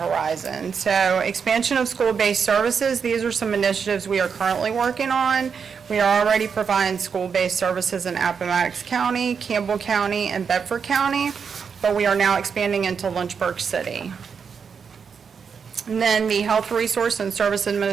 So expansion of school-based services. These are some initiatives we are currently working on. We are already providing school-based services in Appomattox County, Campbell County, and Bedford County, but we are now expanding into Lynchburg City. And then the Health Resource and Service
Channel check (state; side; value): quieter; left; 6.3 dB